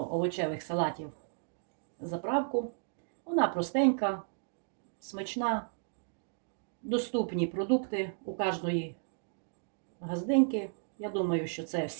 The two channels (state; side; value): silent; left; digital silence